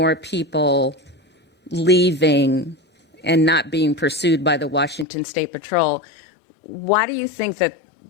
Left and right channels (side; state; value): right; drops out; at 5.1 s